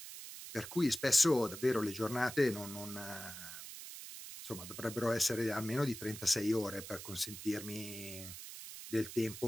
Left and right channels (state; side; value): noise; right; hiss, 11 dB below the sound